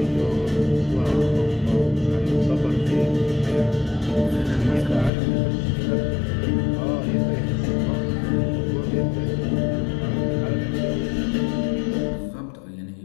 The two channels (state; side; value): drops out; right; at 5.1 s